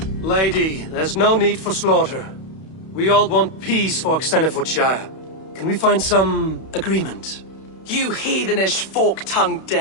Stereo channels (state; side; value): late; right; 31 ms